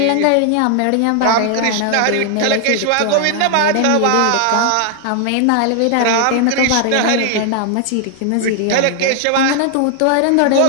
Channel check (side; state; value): both; different; correlation 0.00